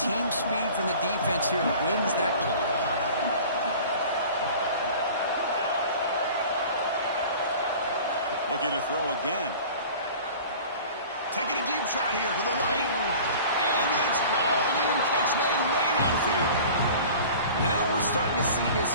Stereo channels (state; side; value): inverted; both; correlation -0.42